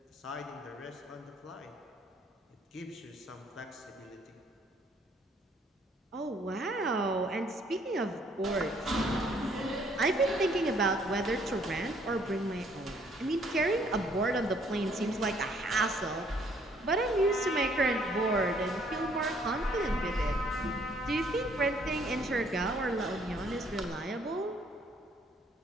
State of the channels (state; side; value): normal; both; correlation 0.64